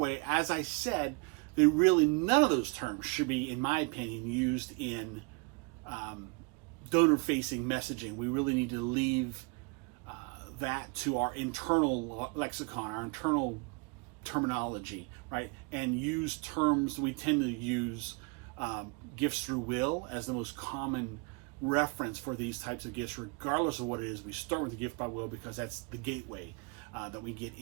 as I said, none of those terms should be, in my opinion, used in donor-facing messaging. We really need to leave that to our internal lexicon, our internal terminology, right? And use terms. We tend to use gifts through will as the most common reference for these types of gifts, regardless of what it is. We start with the gift by will because that's the gateway that we get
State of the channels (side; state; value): left; quieter; 30.7 dB